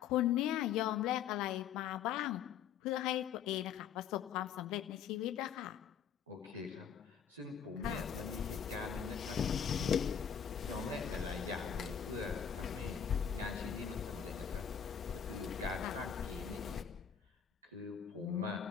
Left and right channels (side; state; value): right; quieter; 8.2 dB